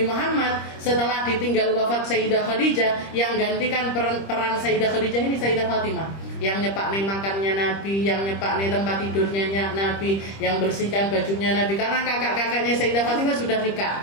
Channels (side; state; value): right; late; 25 ms